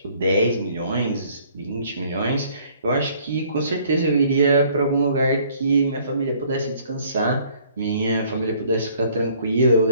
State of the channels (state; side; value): inverted; both; correlation -0.60